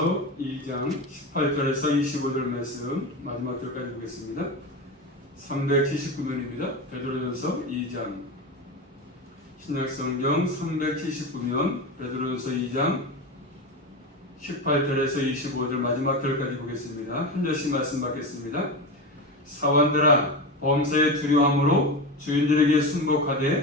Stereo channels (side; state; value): both; normal; correlation 0.21